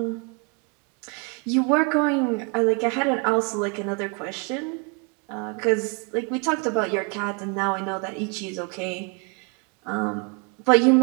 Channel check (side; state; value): left; quieter; 34.1 dB